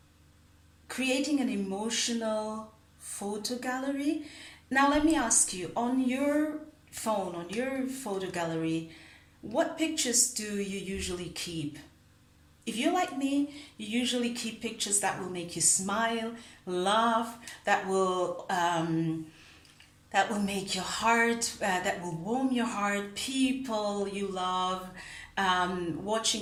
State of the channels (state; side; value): identical; both; correlation 1.00